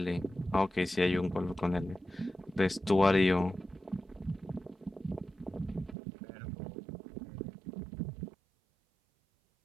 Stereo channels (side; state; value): left; drops out; at 6.0 s